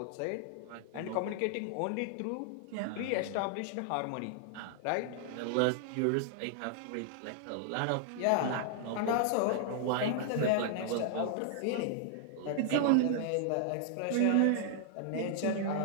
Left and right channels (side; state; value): both; different; correlation -0.01